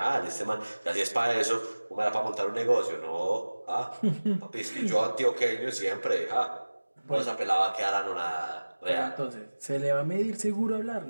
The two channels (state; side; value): inverted; both; correlation -1.00